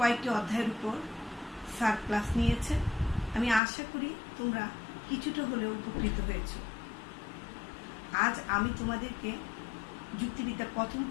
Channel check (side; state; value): right; drops out; at 3.6 s